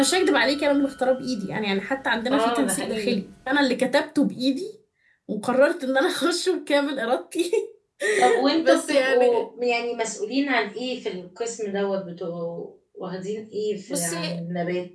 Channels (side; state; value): both; identical; correlation 1.00